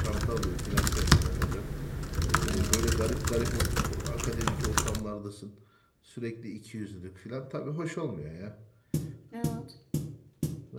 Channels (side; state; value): both; identical; correlation 1.00